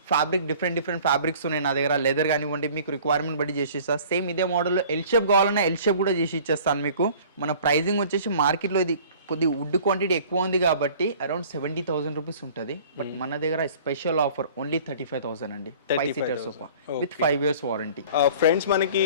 fabric, different fabrics ఉన్నాయి నా దగ్గర. లెదర్ కానివ్వండి, మీకు రిక్వైర్మెంట్ బట్టి చేసి ఇస్తా. సేమ్ ఇదే మోడల్లో ఎల్ షేప్ కావాలన్నా ఎల్ షేప్ కూడా చేసి ఇచ్చేస్తాను మీకు. మన ప్రైజింగ్ వచ్చేసి మార్కెట్లో ఇది కొద్ది వుడ్ క్వాంటిటీ ఎక్కువ ఉంది కాబట్టి అరౌండ్ 70,000 రూపీస్ ఉంటుంది. బట్ మన దగ్గర స్పెషల్ ఆఫర్ ఓన్లీ 35,000 అండి. 5 seater sofa with 5 years warranty. Friends మనకి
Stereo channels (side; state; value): both; inverted; correlation -0.48